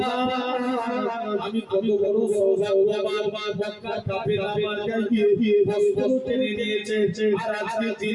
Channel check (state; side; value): identical; both; correlation 1.00